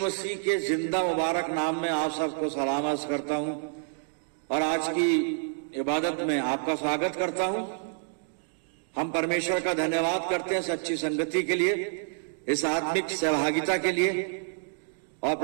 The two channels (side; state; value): left; silent; digital silence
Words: के जिंदा मुबारक नाम में आप सबको सलाम अर्ज करता हूं और आज की इबादत में आपका स्वागत करता हूं। हम परमेश्वर का धन्यवाद करते हैं सच्ची संगति के लिए, इस आत्मिक सहभागिता के लिए, और